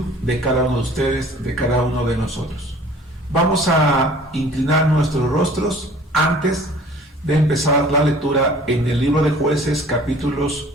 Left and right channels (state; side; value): normal; both; correlation 0.50